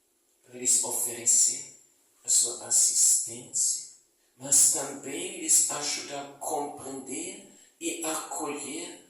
para lhes oferecer a sua assistência, mas também lhes ajudar a compreender e acolher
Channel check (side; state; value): both; normal; correlation 0.95